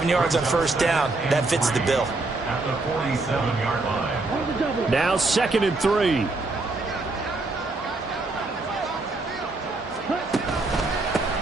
yards on first down, that fits the bill. At the 47-yard line. Now 2nd and 3.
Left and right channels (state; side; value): quieter; left; 3.3 dB